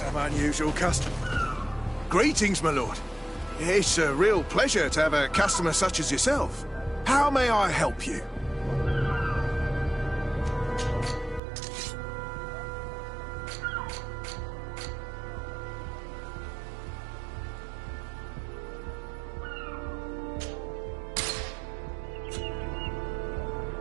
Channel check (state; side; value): drops out; left; at 11.4 s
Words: unusual customers. Greetings, my lord. It's a real pleasure to have a customer such as yourself. How may I help you?